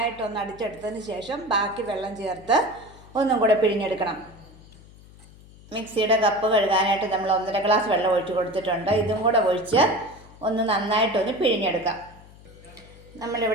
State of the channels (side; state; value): left; noise; hum, 22 dB below the sound